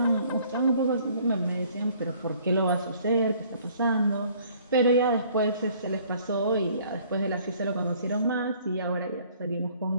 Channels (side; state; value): both; inverted; correlation -0.58